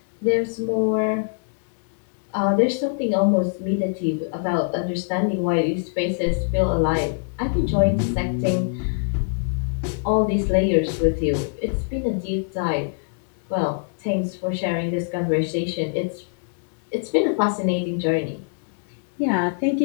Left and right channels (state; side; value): silent; right; digital silence